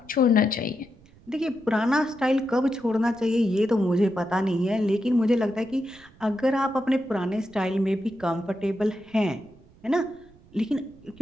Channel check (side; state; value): right; noise; rumble, 26 dB below the sound